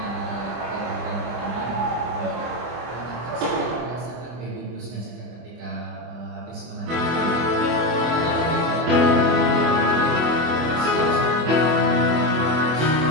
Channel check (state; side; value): late; left; 25 ms